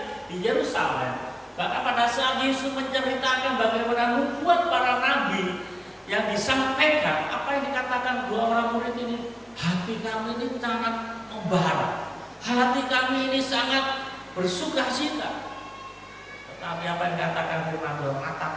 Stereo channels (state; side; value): identical; both; correlation 1.00